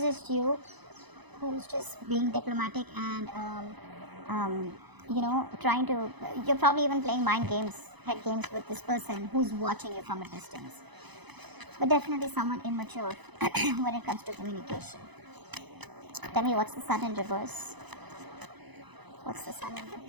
just you who's just being diplomatic and you're probably even playing mind games, head games with this person who's watching you from a distance. But definitely someone immature when it comes to communication. Tell me, what's the Sun in reverse? What's the Sun in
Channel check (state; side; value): late; left; 0.99 ms